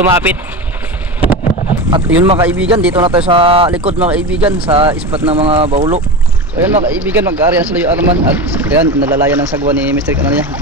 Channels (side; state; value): both; normal; correlation 0.24